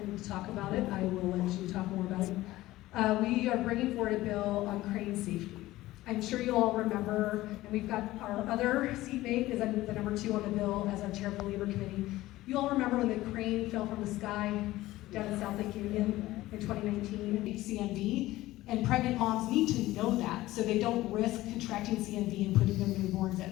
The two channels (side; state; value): right; quieter; 16.9 dB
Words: me to talk about it, I will let you talk more about it. We are bringing forward a bill on crane safety. I'm sure you all remember, and we've got our other seatmate is the number 2 on the bill as our chair of the Labor Committee. You all remember when the crane fell from the sky down in South Lake Union in 2019, CMV, and pregnant moms need to know that so they don't risk contracting CMV and putting their newborns